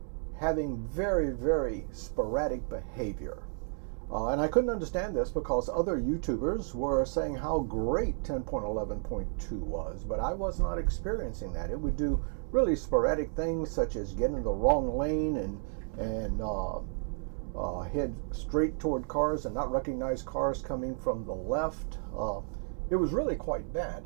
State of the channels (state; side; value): silent; left; 56 dB below the other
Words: having very, very sporadic behavior. And I couldn't understand this because other YouTubers were saying how great 10.11.2 was, but I was not experiencing that. It would do really sporadic things such as get in the wrong lane and head straight toward cars and not recognize cars coming from the left. It was really quite bad.